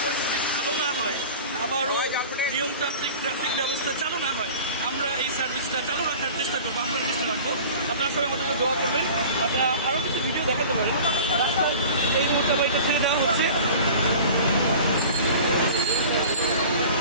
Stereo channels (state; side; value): inverted; both; correlation -0.40